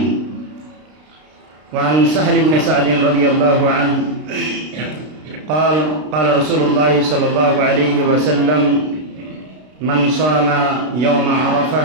وعن سهل بن سعد رضي الله عنه قال رسول الله صلى الله عليه وسلم: من صام يوم عرفة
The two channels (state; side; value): late; left; 32 ms